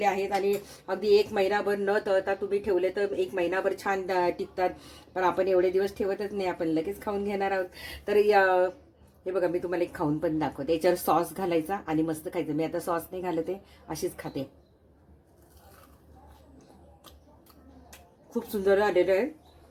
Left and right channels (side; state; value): both; identical; correlation 1.00